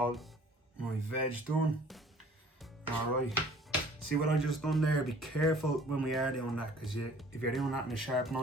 my veg done. Alright, see what I just done there? Be careful when we are doing that, because if you're doing that in a sharp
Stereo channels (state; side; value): normal; both; correlation 0.52